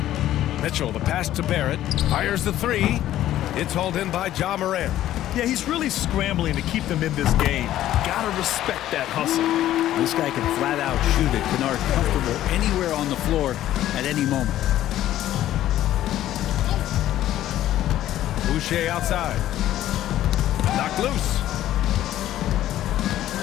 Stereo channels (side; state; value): right; quieter; 13.1 dB